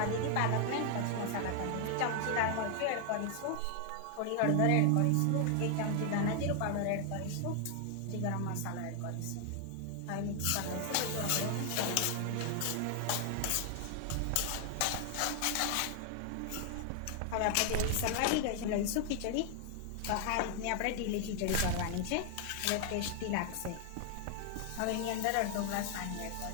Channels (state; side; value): different; both; correlation 0.00